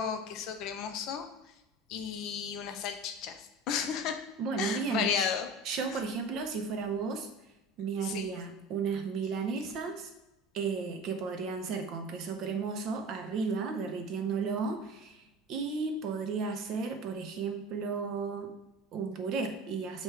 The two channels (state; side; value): normal; both; correlation 0.35